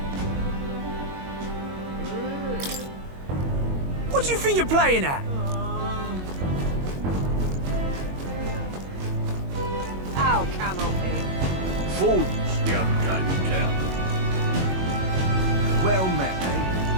What do you think you're playing at? Ow, canopy. Fools, the unkind town. Well met, eh?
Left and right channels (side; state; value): left; late; 22 ms